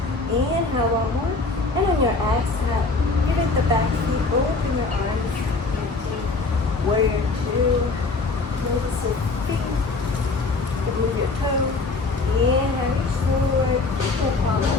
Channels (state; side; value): quieter; right; 3.7 dB